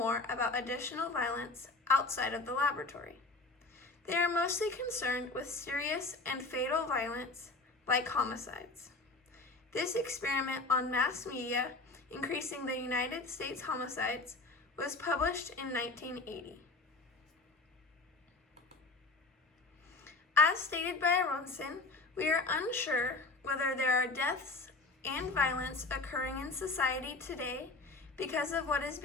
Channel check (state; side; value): quieter; right; 3.3 dB